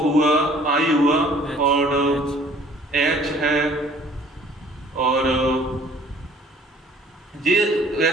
हुआ, आई हुआ, और एच है, और ये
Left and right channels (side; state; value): both; normal; correlation 0.55